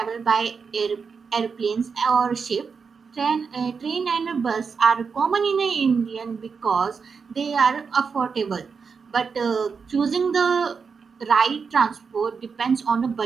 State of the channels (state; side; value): quieter; left; 5.6 dB